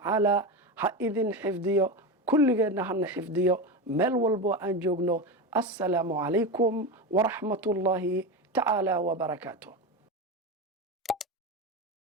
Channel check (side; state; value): both; normal; correlation 0.19